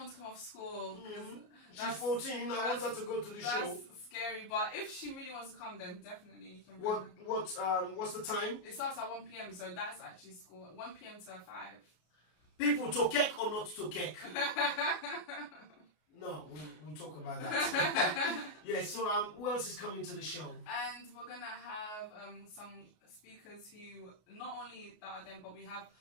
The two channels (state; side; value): late; right; 33 ms